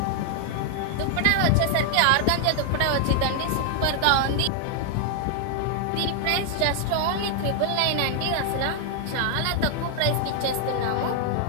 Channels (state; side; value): different; both; correlation 0.00